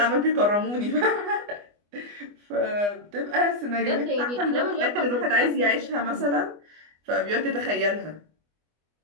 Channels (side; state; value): left; late; 25 ms